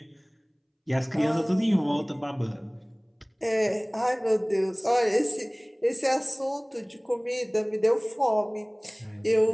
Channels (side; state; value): both; identical; correlation 1.00